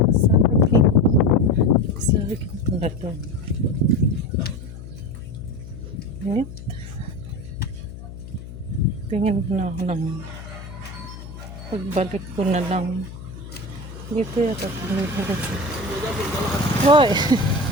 Saging pala to. Init. Tingin ko na ako ng pagbalik ko na lang dito yata kasi. Hoy!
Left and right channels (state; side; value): noise; left; hum, 13 dB below the sound